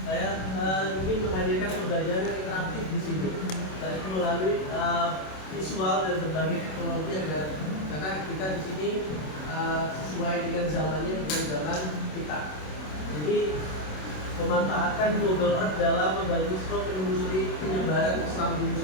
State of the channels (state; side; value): late; right; 27 ms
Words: Saya ingin menghadirkan pembelajaran interaktif di sini, baik melalui visual dan berbagai teknologi agar karena kita di sini sesuai dengan zamannya bukan zaman kita. Jadi memanfaatkan Google Earth dalam membantu siswa menelusuri penyebaran Islam di